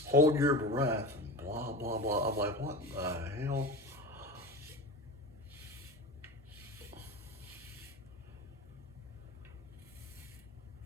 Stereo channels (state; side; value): normal; both; correlation 0.29